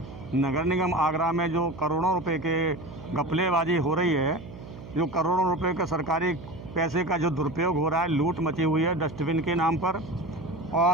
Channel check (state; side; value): noise; right; hum, 15 dB below the sound